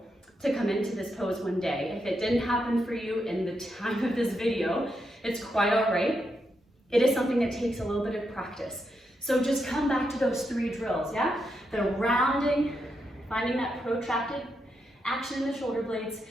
to come into this pose one day. If it didn't happen for you in the time of this video, it's quite all right. It is something that takes a little bit of practice. So just come back to those 3 drills, yeah? The rounding, finding that protracted action in the shoulder blades.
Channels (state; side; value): normal; both; correlation 0.83